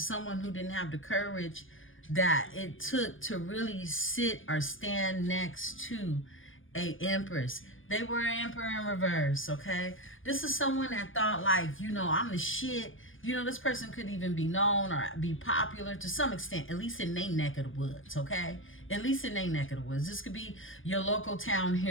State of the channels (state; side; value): late; right; 0.58 ms